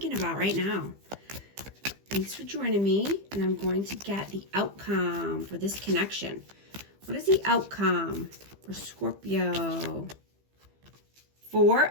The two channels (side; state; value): left; late; 15 ms